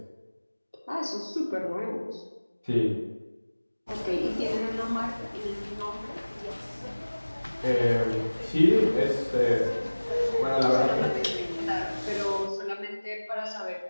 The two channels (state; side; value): inverted; both; correlation -1.00